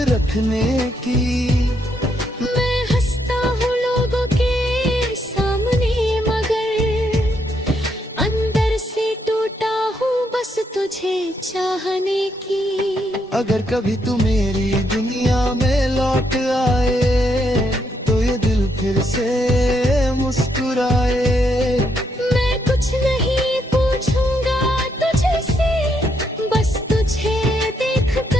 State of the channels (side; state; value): both; normal; correlation 0.76